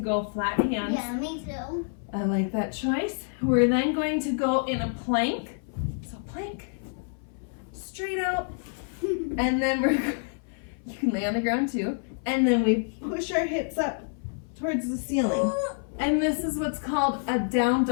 flat hands. Yeah, me too. I like that choice. We're then going to go in a plank. So plank, straight out. And then you can lay on the ground too. And then we push our hips up towards the ceiling. And this is what's called a down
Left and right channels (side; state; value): right; silent; 60 dB below the other